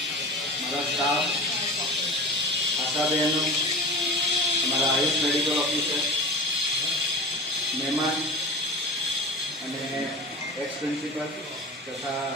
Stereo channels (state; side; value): normal; both; correlation 0.33